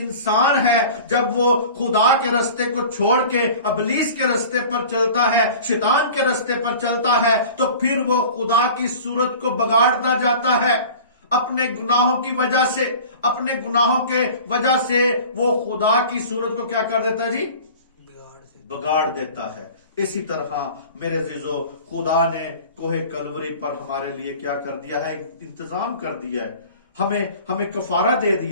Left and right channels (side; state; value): both; inverted; correlation -0.41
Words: है जब वो खुदा के रास्ते को छोड़ के इब्लीस के रास्ते पर चलता है, शैतान के रास्ते पर चलता है, तो फिर वो खुदा की सूरत को बिगाड़ता जाता है। अपने गुनाहों की वजह से, अपने गुनाहों के वजह से वो खुदा की सूरत को क्या कर देता है जी? बिगाड़ देता है। इसी तरह मेरे अजीजों, खुदा ने कोहे कलवरी पर हमारे लिए क्या कर दिया है? इंतजाम कर दिया है। हमें कफारा दे